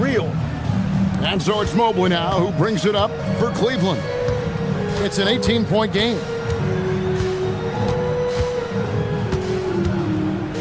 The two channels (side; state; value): both; identical; correlation 1.00